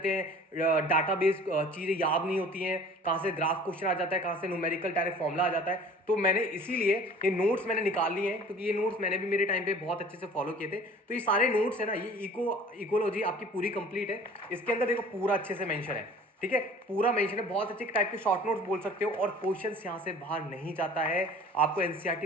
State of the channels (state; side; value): normal; both; correlation 0.47